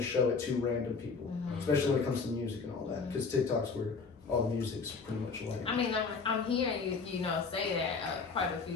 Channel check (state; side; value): quieter; right; 4.8 dB